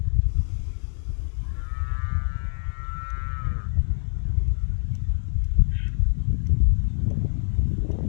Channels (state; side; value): silent; right; 62 dB below the other